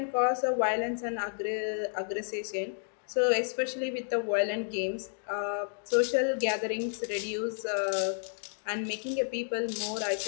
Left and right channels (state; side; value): silent; right; digital silence